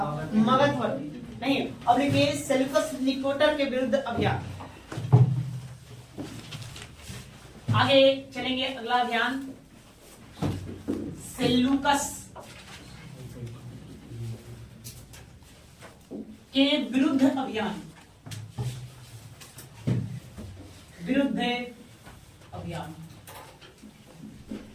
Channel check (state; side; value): identical; both; correlation 1.00